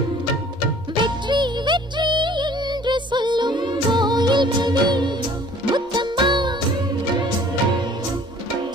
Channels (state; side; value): normal; both; correlation 0.52